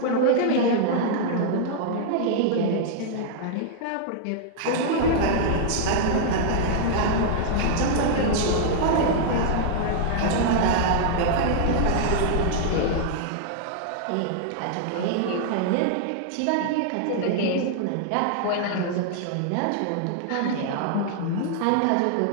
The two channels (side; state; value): both; different; correlation -0.01